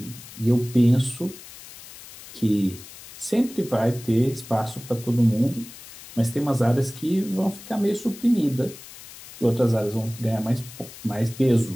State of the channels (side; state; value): left; noise; hiss, 17 dB below the sound